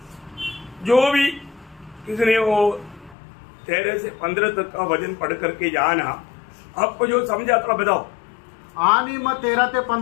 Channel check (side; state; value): right; drops out; at 3.2 s